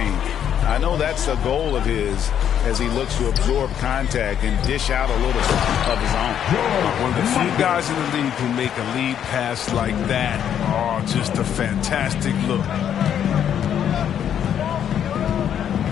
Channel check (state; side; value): quieter; right; 9.3 dB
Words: I know that's the goal of his as he looks to absorb contact and dish out a little of his own. One of the few guys in the league who make a lead pass like that. Oh, just a fantastic look.